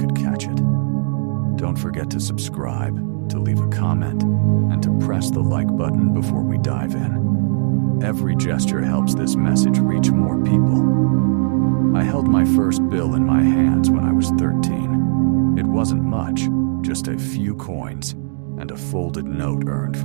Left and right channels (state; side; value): silent; left; digital silence